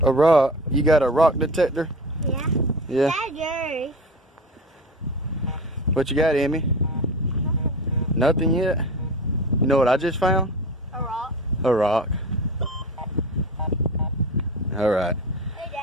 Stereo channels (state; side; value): normal; both; correlation 0.31